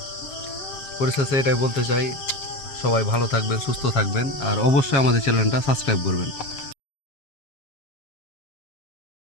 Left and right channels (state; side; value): late; right; 7.3 ms